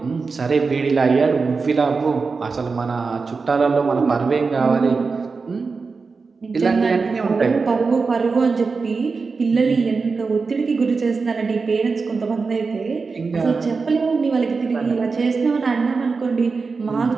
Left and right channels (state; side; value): quieter; left; 4.6 dB